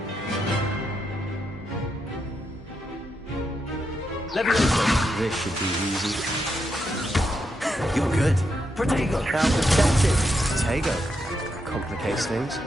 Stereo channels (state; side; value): normal; both; correlation 0.82